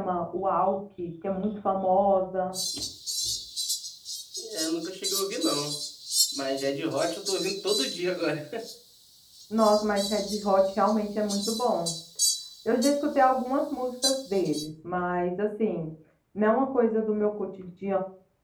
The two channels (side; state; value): both; identical; correlation 1.00